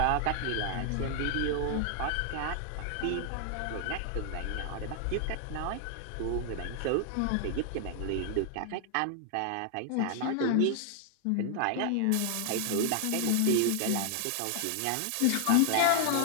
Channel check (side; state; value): both; different; correlation 0.00